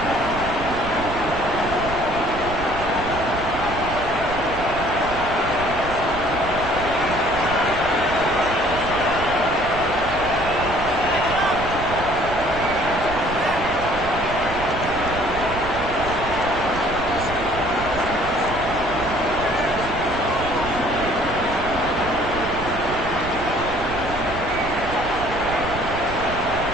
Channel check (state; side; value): noise; right; rumble, 9 dB below the sound